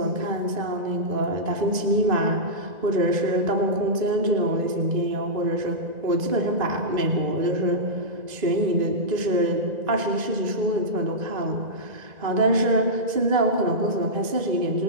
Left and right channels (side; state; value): left; late; 1.9 ms